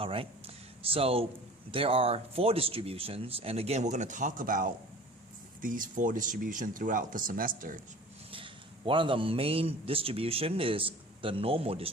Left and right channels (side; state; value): both; normal; correlation 0.43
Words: so there are 4 distributions, and again we're going to talk about these 4 distributions throughout the semester. One of the main distribution is the normal